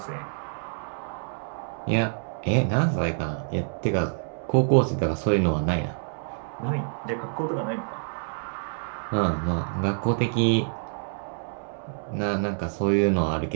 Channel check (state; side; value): silent; left; 60 dB below the other